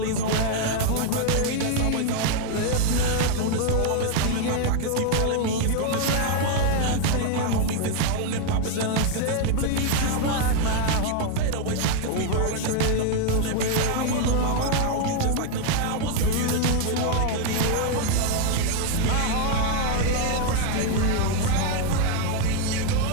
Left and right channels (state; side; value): different; both; correlation 0.00